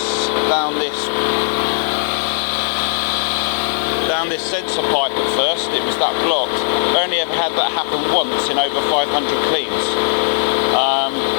down this sensor pipe at first. It was that blocked. We only ever had that happen once in over 500 cleans.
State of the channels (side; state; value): right; silent; 55 dB below the other